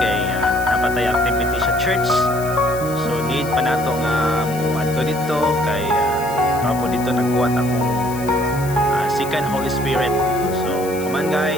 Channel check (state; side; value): noise; left; hiss, 15 dB below the sound